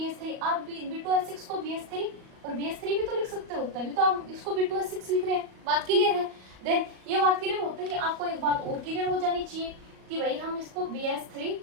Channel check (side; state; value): left; late; 38 ms